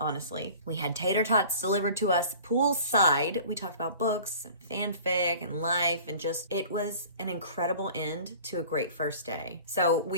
We had tater tots delivered to us poolside. We talked about books and fanfic and life, and just, it was an incredible end to a great first day. So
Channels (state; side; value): inverted; both; correlation -0.44